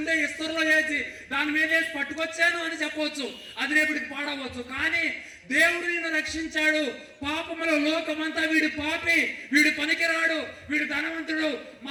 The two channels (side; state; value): both; identical; correlation 1.00